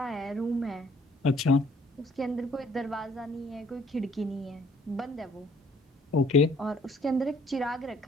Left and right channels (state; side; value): normal; both; correlation 0.61